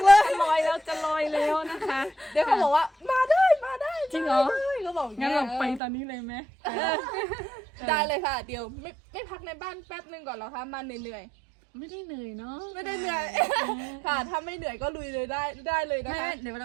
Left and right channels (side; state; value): left; drops out; at 5.8 s